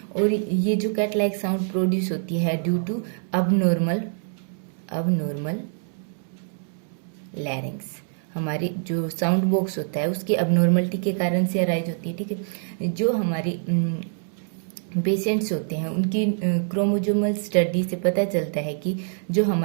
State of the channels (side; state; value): left; silent; 61 dB below the other